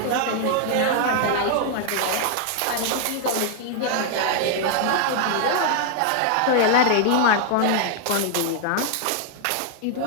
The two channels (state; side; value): different; both; correlation 0.00